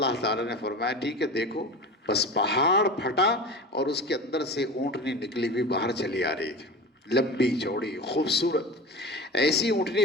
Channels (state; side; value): normal; both; correlation 0.31